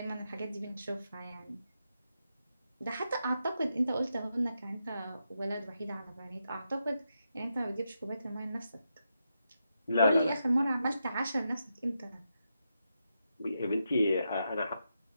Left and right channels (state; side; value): inverted; both; correlation -0.85